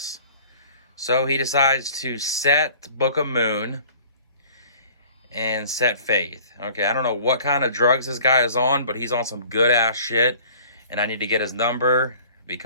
So he decides to set Book of Moon and set Faith. Okay, I don't know what kind of drugs this guy is on, but he's on some good-ass shit. And I need to get his number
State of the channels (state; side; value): inverted; both; correlation -0.50